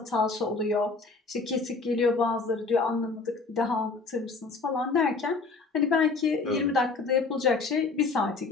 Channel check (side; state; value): right; quieter; 4.0 dB